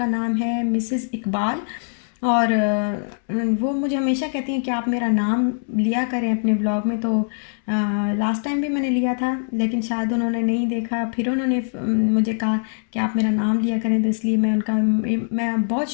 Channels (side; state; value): right; silent; digital silence